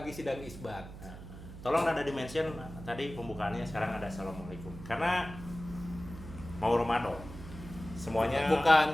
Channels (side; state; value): right; noise; hum, 13 dB below the sound